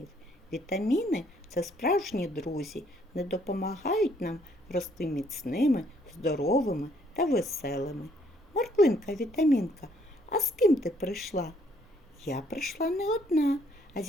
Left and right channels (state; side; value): normal; both; correlation 0.66